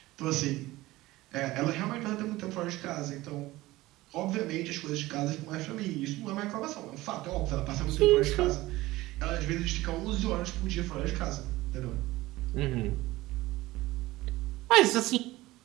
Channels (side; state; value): left; quieter; 18.3 dB